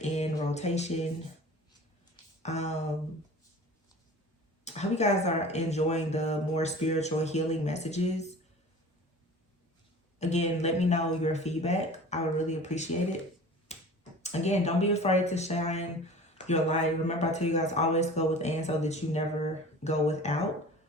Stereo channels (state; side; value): normal; both; correlation 0.41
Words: in rotation. I hope you guys are enjoying the more spiritual healing messages. Again, let me know your feedback. I would really appreciate it. Again, don't be afraid to shine your light. Remember, I tell you guys, always go within so that you never go without.